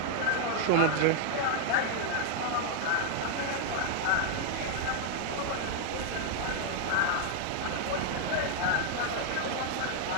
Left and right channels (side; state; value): both; different; correlation 0.00